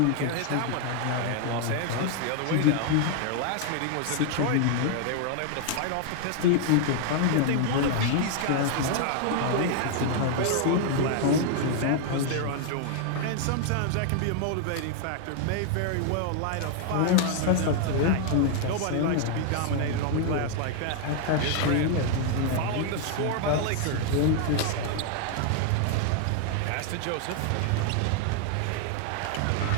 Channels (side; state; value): both; different; correlation 0.00